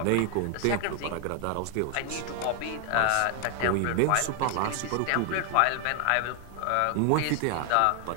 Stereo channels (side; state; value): both; different; correlation 0.00